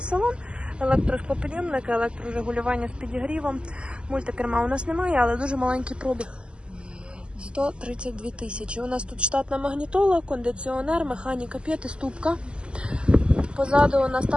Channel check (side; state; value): left; late; 0.051 ms